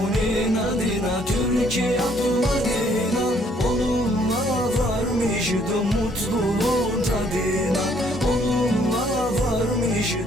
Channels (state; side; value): normal; both; correlation 0.65